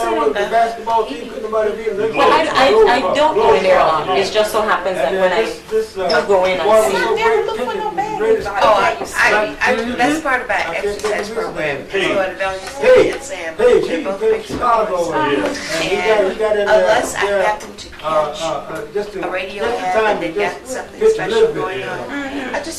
basketball team couldn't nobody beat them. Well, I don't go in there a lot. It just so happens that when I do go in, I see. That's part of our exercise program. Hey. Go to Valley Hey, and Sam. hey, They're he both played big Chicago. supporters. And he got in Unless I there, happen to catch just a radio just in ad time and to they've got just something pitch a special little bit, going you know. on, I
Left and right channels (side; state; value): both; identical; correlation 1.00